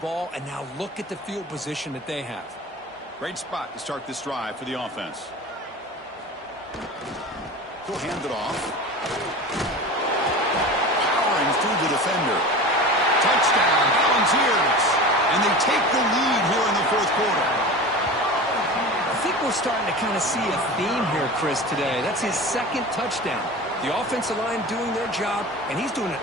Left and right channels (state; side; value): normal; both; correlation 0.32